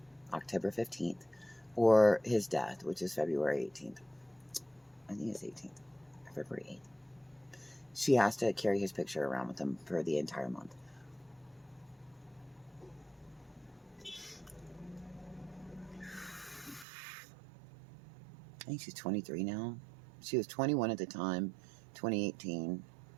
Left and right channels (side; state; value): left; drops out; at 16.9 s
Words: October 15th, or his death, which is February 18th. I think it's 18th, February 8th. She has to carry his picture around with him for the entire month. I think she's 23 now. She was 21 at the time, 2018.